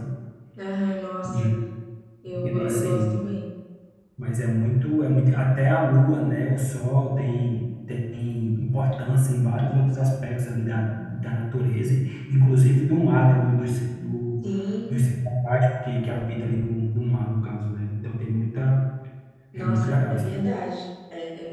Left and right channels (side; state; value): both; identical; correlation 1.00